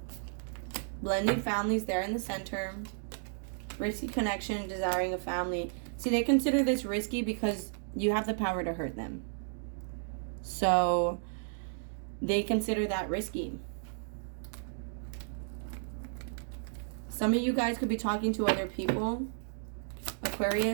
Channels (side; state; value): left; silent; digital silence